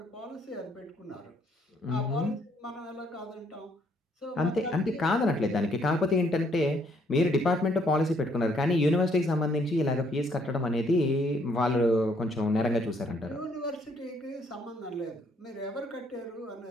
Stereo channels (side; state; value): both; normal; correlation 0.68